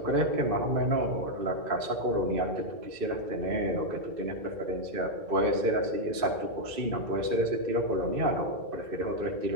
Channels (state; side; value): late; left; 2.6 ms